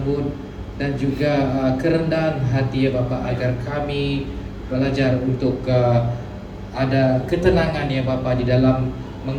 dan juga kerendahan hati ya Bapak, agar kami belajar untuk ada ketenangan ya Bapak di dalam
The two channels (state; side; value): identical; both; correlation 1.00